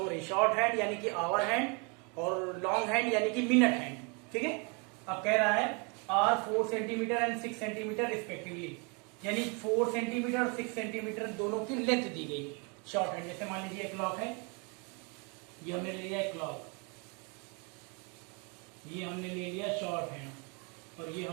रही है। शॉर्ट हैंड यानी कि आवर हैंड और लॉन्ग हैंड यानी कि मिनट हैंड। ठीक है, अब कह रहा है are 4 centimetre and 6 centimetre respectively, यानी 4 सेंटीमीटर और 6 सेंटीमीटर दोनों की लेंथ दी गई शॉर्ट हैंड। जैसे मान लीजिए क्लॉक है, ये हमने ले लिया क्लॉक, ये हमने ले लिया शॉर्ट हैंड और ये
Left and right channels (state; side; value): quieter; left; 33.3 dB